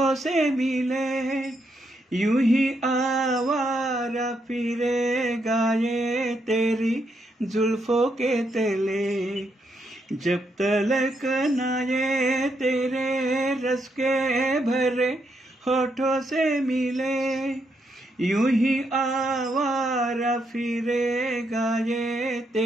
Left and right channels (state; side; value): normal; both; correlation 0.79